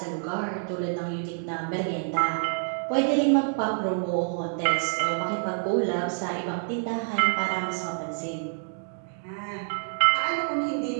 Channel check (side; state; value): left; silent; digital silence